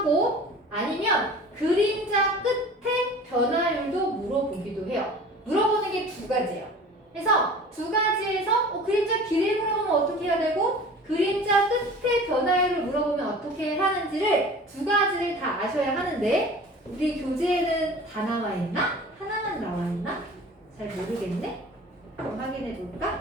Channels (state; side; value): normal; both; correlation 0.42